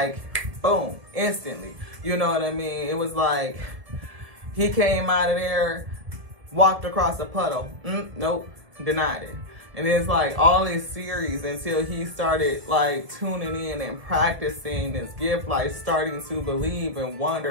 boom, instantly, you know what I mean? It was like, he came out of there, walked across a puddle, nope, denied it. And it's like all this series until he started like tuning in and practicing this gift, like starting to believe and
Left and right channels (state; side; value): late; left; 1.7 ms